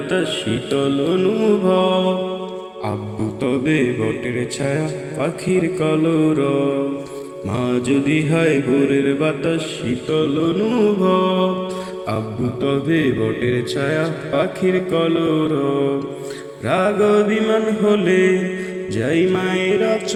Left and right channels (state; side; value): identical; both; correlation 1.00